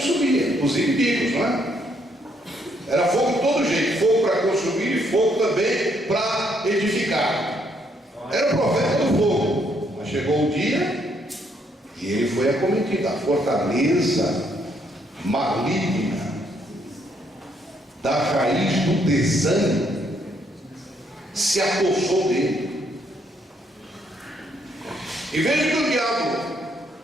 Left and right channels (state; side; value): normal; both; correlation 0.71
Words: os inimigos, não é? Era fogo de todo jeito, fogo para consumir e fogo também para edificar. Era o profeta do fogo. Mas chegou o dia e ele foi acometido. A fortaleza maligna da raiz do desânimo se apossou dele. E veja que o diabo